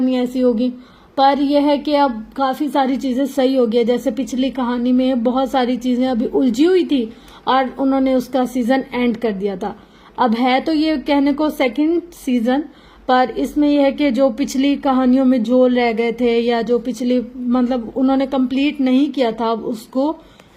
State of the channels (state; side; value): identical; both; correlation 1.00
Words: ایسی ہوگی۔ پر یہ ہے کہ اب کافی ساری چیزیں صحیح ہو گئی، جیسے پچھلی کہانی میں بہت ساری چیزیں ابھی الجھی ہوئی تھی اور انہوں نے اس کا سیزن اینڈ کر دیا تھا۔ اب ہے تو یہ کہنے کو 2nd سیزن، پر اس میں یہ ہے کہ جو پچھلی کہانیوں میں جھول رہ گئے تھے یا جو پچھلی مطلب انہوں نے کمپلیٹ نہیں کیا تھا، اب اس کو